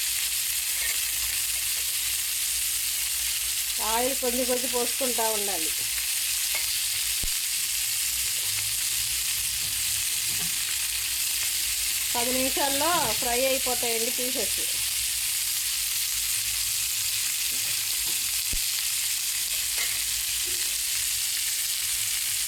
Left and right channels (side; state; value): both; identical; correlation 1.00